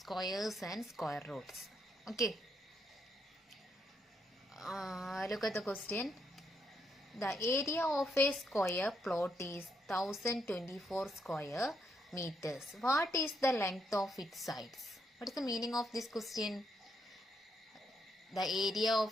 and square roots. Okay, look at the question. The area of a square plot is 1024 square meters. What is the length of its sides? What is the meaning of this question? The area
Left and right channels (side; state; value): both; normal; correlation 0.77